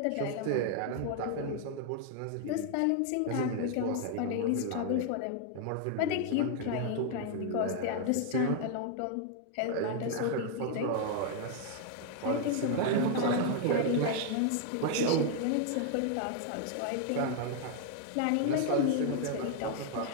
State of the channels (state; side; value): different; both; correlation 0.00